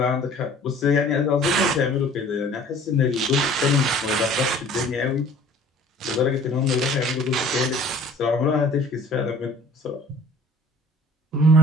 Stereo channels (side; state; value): both; normal; correlation 0.50